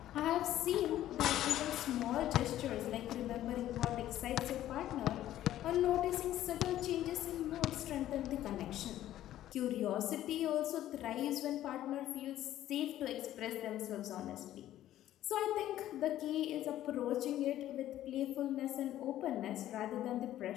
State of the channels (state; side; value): quieter; right; 13.0 dB